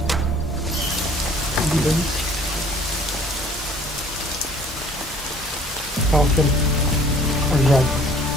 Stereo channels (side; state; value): both; normal; correlation 0.54